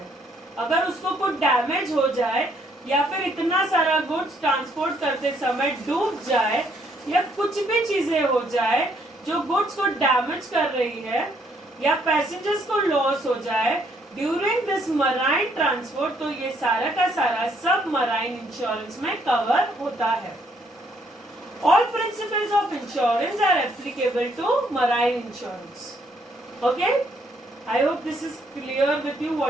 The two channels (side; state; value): both; normal; correlation 0.69